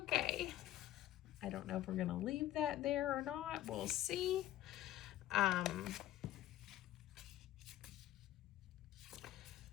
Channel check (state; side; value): quieter; right; 13.6 dB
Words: I don't know if we're gonna leave that there or not. We'll see. That